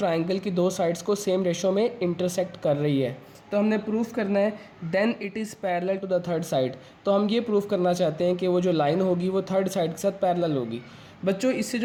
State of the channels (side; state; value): both; identical; correlation 1.00